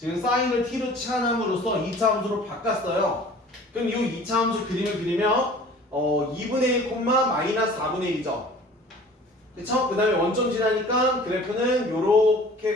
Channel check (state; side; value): normal; both; correlation 0.47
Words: 사인을 t로 치환함으로써 2차 함수로 바꿨어요. 그럼 이 2차 함수 그림을 그리면 2분의 1, 마이너스 4분의 1이죠. 그쵸? 그 다음에 원점 지나니까 그래프는 요렇게